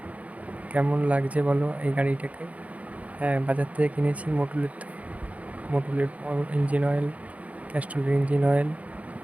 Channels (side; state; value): left; late; 0.067 ms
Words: কেমন লাগছে বলো এই গাড়িটাকে? হ্যাঁ, বাজার থেকে কিনেছি মোটুলের ইঞ্জিন অয়েল, ক্যাস্ট্রলের ইঞ্জিন অয়েল,